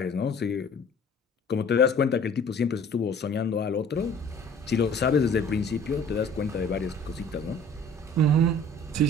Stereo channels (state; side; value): normal; both; correlation 0.50